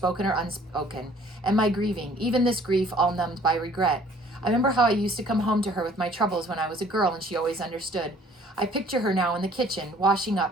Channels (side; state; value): both; normal; correlation 0.56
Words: or unspoken, and my grieving, even this grief all numbed by regret. I remember how I used to come home to her with my troubles when I was a girl, and she always understood. I picture her now in the kitchen, washing